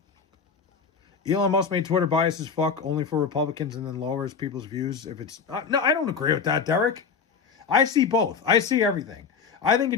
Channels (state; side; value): quieter; right; 5.8 dB